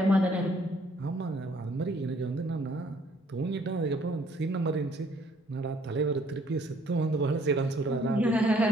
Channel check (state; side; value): normal; both; correlation 0.62